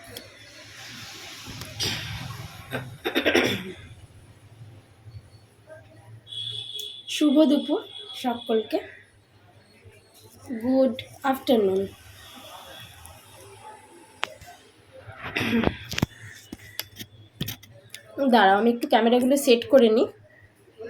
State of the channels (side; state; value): both; identical; correlation 1.00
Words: শুভ দুপুর সকলকে, গুড আফটারনুন। দাঁড়াও আমি একটু ক্যামেরাগুলো সেট করে নিই,